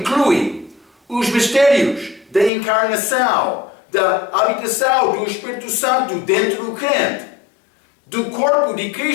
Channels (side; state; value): right; drops out; at 2.5 s